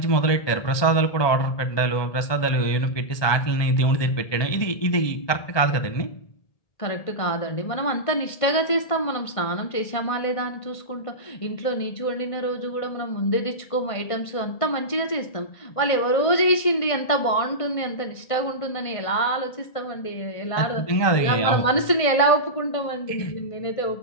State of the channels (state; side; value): late; right; 1.5 ms